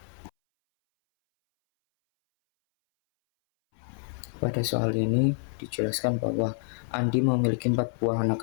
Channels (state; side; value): silent; right; 60 dB below the other